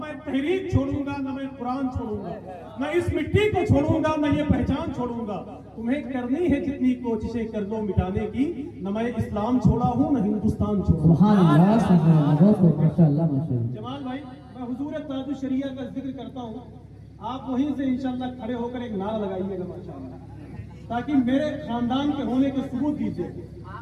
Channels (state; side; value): identical; both; correlation 1.00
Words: تحریک چھوڑوں گا، نہ میں قرآن چھوڑوں گا، نہ اس مٹی کو چھوڑوں گا، نہ یہ پہچان چھوڑوں گا. تمہیں کرنی ہے جتنی کوششیں کر لو مٹانے کی. نہ میں اسلام چھوڑا ہوں، نہ ہندوستان چھوڑا. سبحان اللہ سبحان اللہ. بہت ماشاءاللہ ماشاءاللہ. جمال بھائی، میں حضور تاج الشریعہ کا ذکر کرتا ہوں، آپ وہیں سے انشاءاللہ کھڑے ہو کر ایک نعرہ لگائیے گا ماشاءاللہ، تاکہ میرے خاندان کے ہونے کے ثبوت دیجیے